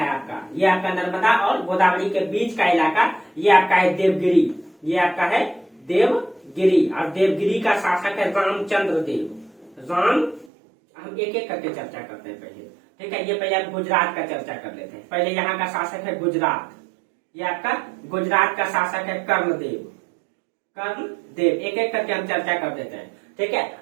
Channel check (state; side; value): drops out; left; at 10.5 s